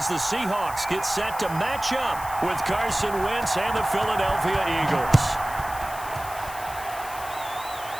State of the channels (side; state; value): left; noise; hiss, 14 dB below the sound